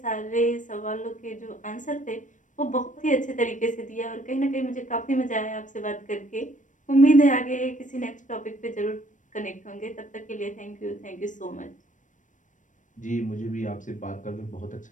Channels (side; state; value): right; late; 0.37 ms